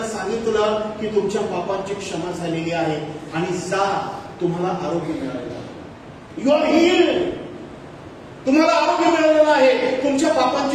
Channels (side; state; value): both; identical; correlation 1.00